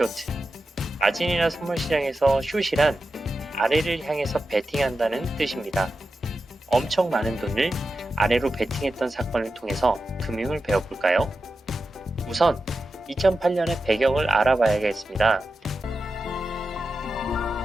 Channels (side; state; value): both; normal; correlation 0.91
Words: 마진이나 선물 시장에서 숏이란 아래를 향해서 베팅한다는 뜻입니다. 엄청 많은 돈을 아래로 베팅했던 사건을 통해서 금융을 배워볼까요? 우선 2008년의 배경을 알아봐야겠습니다.